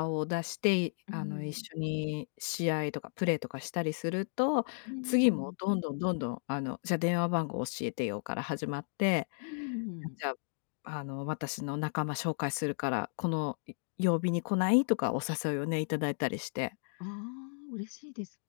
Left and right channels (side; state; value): right; silent; digital silence